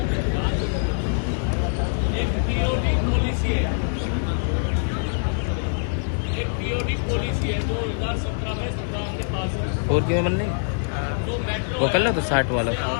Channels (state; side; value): silent; right; digital silence